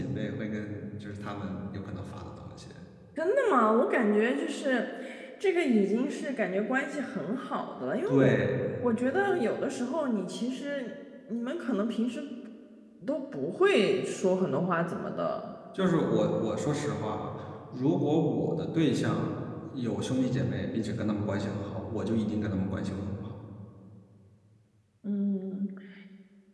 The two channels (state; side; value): identical; both; correlation 1.00